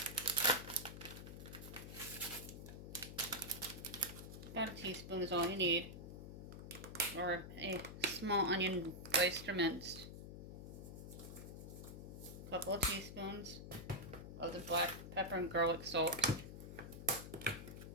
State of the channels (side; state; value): left; noise; hum, 10 dB below the sound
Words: About a teaspoon is all you need. Or a small onion diced or minced. A couple of teaspoons of the black pepper and garlic salt.